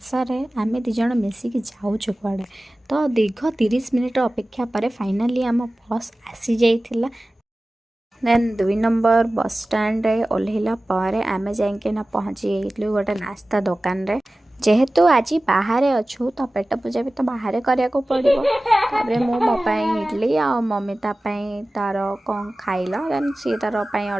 रे आम दिज मिसिकी जाऊँ कड़े तो दीर्घ 30 मिनिट अपेक्षा पर फाइनाली आम बस आसी जाइथिला। देन 2 नंबर बस स्टैंड रे ओल्हेला पर आम जाइकिना पहुँची जाइलु गोटे नास्ता दुकान रे। जेहेतु आज बाहर अच्छु तो पेट पूजा भी तो बाहर करिया को पड़ो। तापर मो इडली आ मम्मी तार कौन खाइला देन सी तार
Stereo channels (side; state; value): both; normal; correlation 0.97